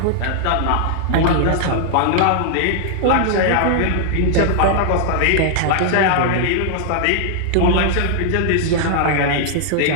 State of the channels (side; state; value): both; different; correlation -0.01